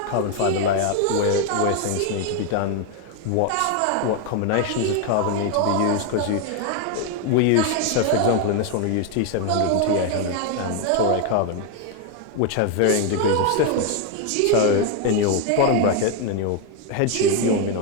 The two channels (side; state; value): both; different; correlation 0.01